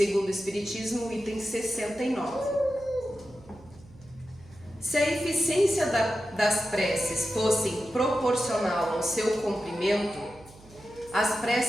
o Espiritismo, item 69. Se a eficiência das preces fosse proporcional ao seu comprimento, as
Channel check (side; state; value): right; noise; hum, 23 dB below the sound